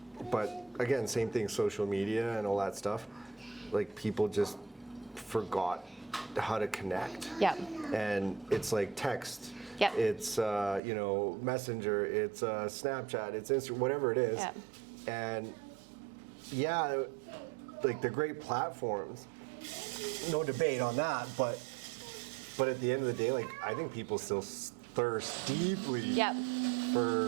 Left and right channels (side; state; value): left; drops out; at 10.8 s